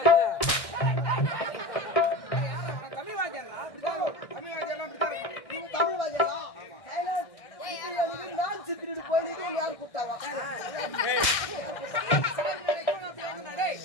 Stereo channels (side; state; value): right; late; 1.6 ms